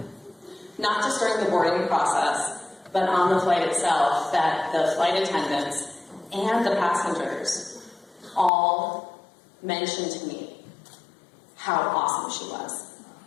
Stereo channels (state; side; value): drops out; right; at 8.5 s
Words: not just during the boarding process, but on the flight itself, that the flight attendants and the passengers all mentioned to me how awesome she was.